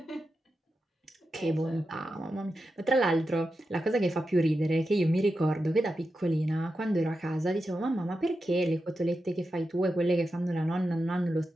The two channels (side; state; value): both; normal; correlation 0.90